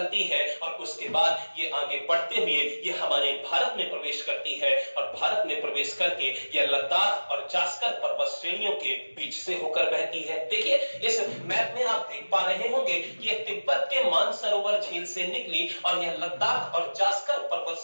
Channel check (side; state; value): both; inverted; correlation -1.00